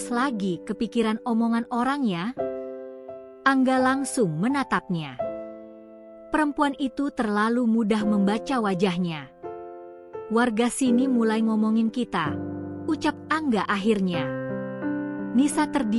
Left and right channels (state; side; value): identical; both; correlation 1.00